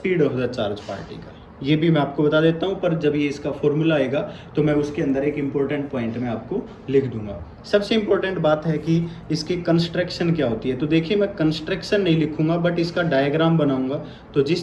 of the charge particle. ये भी मैं आपको बता देता हूँ, पर जब ये इसका फॉर्मूला आएगा तो मैं उसके अंदर एक इम्पोर्टेंट पॉइंट में आपको लिख दूंगा। सबसे इम्पोर्टेंट बात है कि इसकी कंस्ट्रक्शन क्या होती है। तो देखिए, मैं कंस्ट्रक्शन नहीं लिखूंगा, बट इसका डायग्राम बनाऊंगा। तो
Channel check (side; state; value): both; identical; correlation 1.00